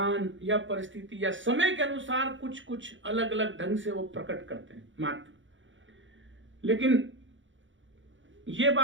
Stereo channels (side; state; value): left; late; 0.56 ms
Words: या परिस्थिति या समय के अनुसार कुछ अलग अलग ढंग से वो प्रकट करते हैं मात्र। लेकिन ये